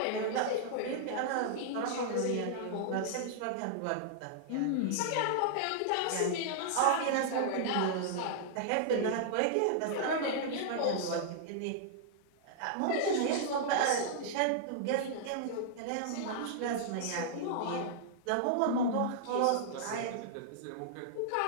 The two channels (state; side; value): different; both; correlation -0.01